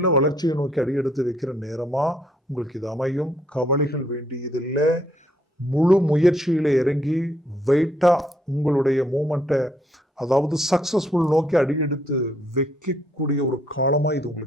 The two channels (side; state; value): both; normal; correlation 0.69